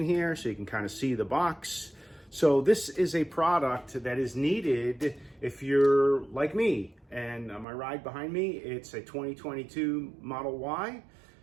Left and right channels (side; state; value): left; drops out; at 7.7 s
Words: here so you can kind of see the box. So this is a product that is needed if you're like me. And my ride behind me, it's a 2022 Model Y.